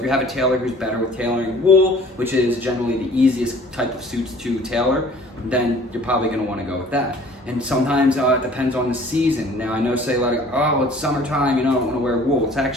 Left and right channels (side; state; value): both; normal; correlation 0.51